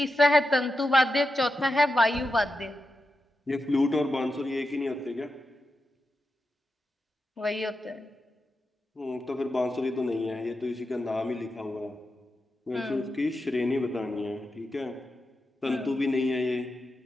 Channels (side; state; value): both; normal; correlation 0.89